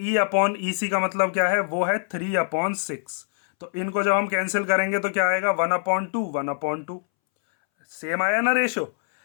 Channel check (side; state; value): right; silent; 63 dB below the other